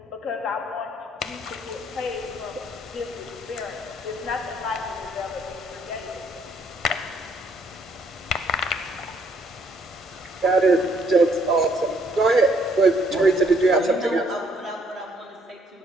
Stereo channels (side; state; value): both; normal; correlation 0.67